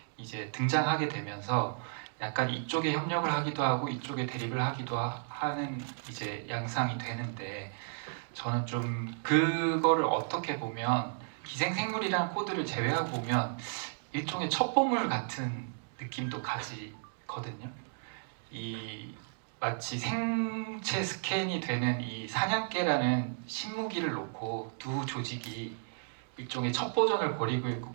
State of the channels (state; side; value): silent; left; digital silence